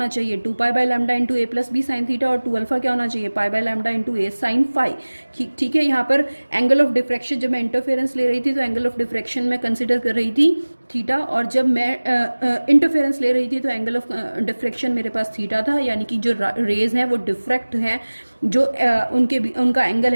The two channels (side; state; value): both; inverted; correlation -1.00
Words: चाहिए, 2 pi by lambda into A plus B sine theta, और 2 अल्फा क्या होना चाहिए, pi by lambda into A sine phi. ठीक है, यहाँ पर एंगल ऑफ डिफ्रैक्शन जब मैं इंटरफेरेंस ले रही थी तो एंगल ऑफ डिफ्रैक्शन में कंसिडर कर रही थी थीटा, और जब मैं इंटरफेरेंस ले रही थी तो एंगल ऑफ डिफ्रैक्शन मेरे पास थीटा था। यानी कि जो रेज हैं वो डिफ्रैक्ट हैं, जो उनका एंगल